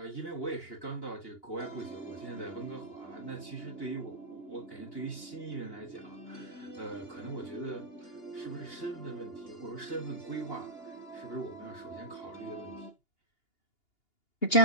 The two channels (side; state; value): right; late; 2.8 ms